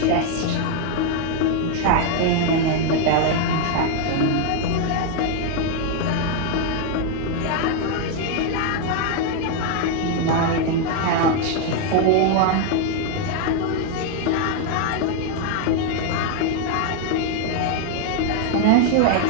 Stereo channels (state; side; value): different; both; correlation 0.00